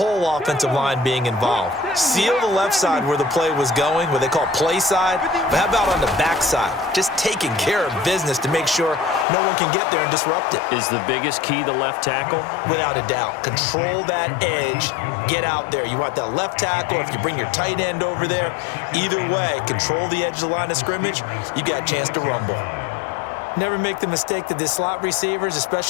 offensive line being involved? Seal the left side where the play was going, what they call play side. But how about on the back side? Just taking care of business to make sure no one can get there and disrupt it. Is the biggest key the left tackle? Without a doubt. Control that edge. Get out there. You want that left tackle. If you bring your tight end over there, either way, control the edge of the line of scrimmage. You got a chance to rumble. Never make the mistake that the slot receivers,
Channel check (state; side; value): drops out; right; at 9.2 s